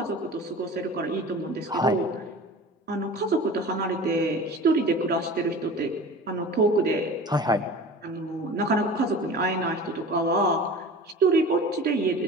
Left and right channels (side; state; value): both; normal; correlation 0.38